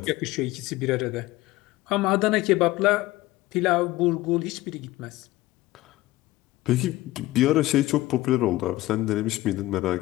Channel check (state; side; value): quieter; right; 17.6 dB